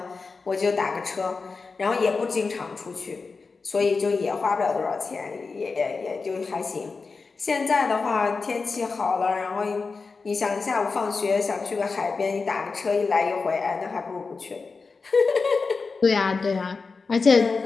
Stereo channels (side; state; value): right; quieter; 4.4 dB